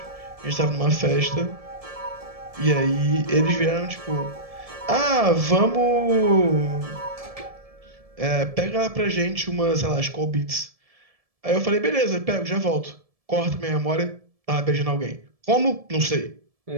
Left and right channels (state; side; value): late; left; 1.7 ms